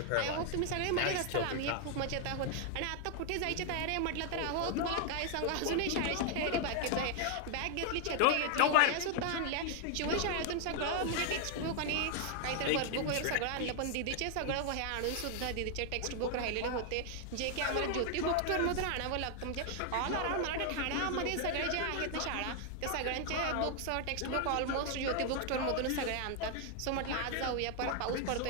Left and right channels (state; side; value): different; both; correlation 0.00